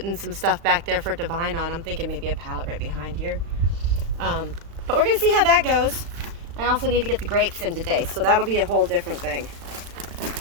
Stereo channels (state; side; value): late; left; 35 ms